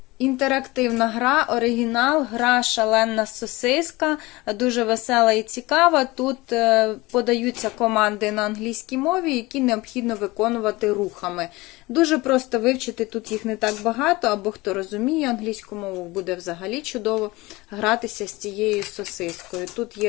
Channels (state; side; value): quieter; right; 21.5 dB